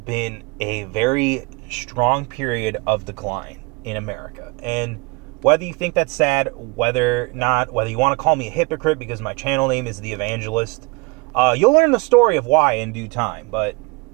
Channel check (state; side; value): quieter; left; 28.2 dB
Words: a very strong period of decline in America. And whether you think that's sad, whether you want to call me a hypocrite because my channel name is The Evangelist, you'll learn the story of why in due time. But